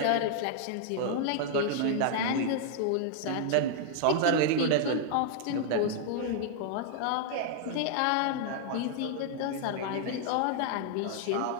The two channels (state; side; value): different; both; correlation 0.00